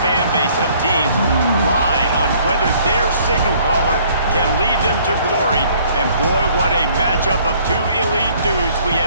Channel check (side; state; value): both; inverted; correlation -0.59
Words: fan base of teams ride on whether their signal caller can lead them to glory. And boy, what a matchup of two elite dudes we